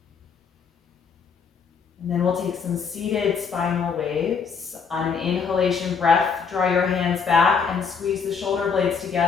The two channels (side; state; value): right; quieter; 5.9 dB